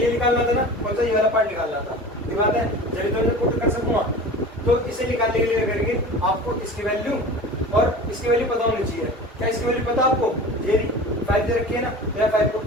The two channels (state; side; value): normal; both; correlation 0.36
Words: निकालना था ना, कौन सा, ये वाला पार्ट निकालना था, ये बात है, जब तो मैं पुट कर सकूंगा। तो इसे निकालने के लिए करेंगे, आपको इसकी वैल्यू और इसकी वैल्यू पता होनी चाहिए। क्या इसकी वैल्यू पता आपको, ये 5 दे रखी है ना, मेरा 5